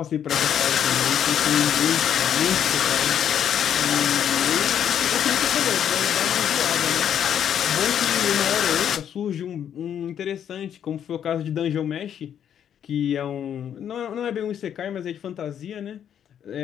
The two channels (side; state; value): right; quieter; 9.2 dB